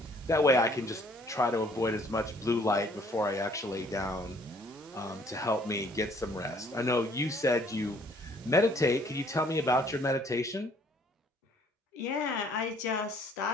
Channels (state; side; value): normal; both; correlation 0.60